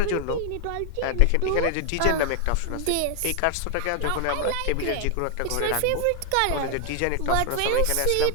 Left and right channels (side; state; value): both; different; correlation 0.00